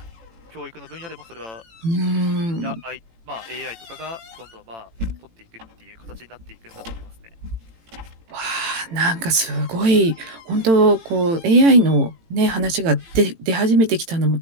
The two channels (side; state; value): left; late; 18 ms